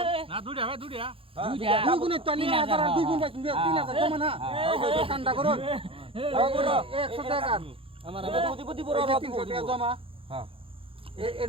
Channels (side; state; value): left; late; 0.27 ms